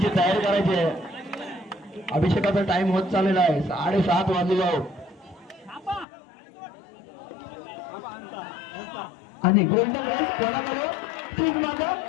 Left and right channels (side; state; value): right; drops out; at 6.1 s